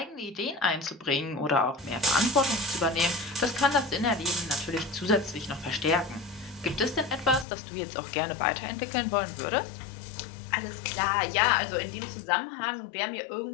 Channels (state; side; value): drops out; right; at 7.5 s